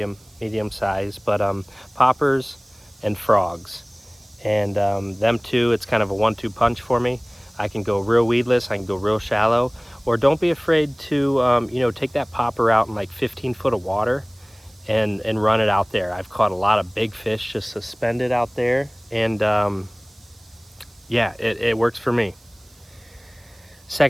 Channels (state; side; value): noise; right; hiss, 29 dB below the sound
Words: size, but poppers and frogs, and them two, it's kind of a 1-2 punch for me. I can go real weedless, I can go real shallow, or don't be afraid to take that popper out in like 15 foot of water and run it out there. I've caught a lot of big fish just suspended out there, and yeah, it works for me.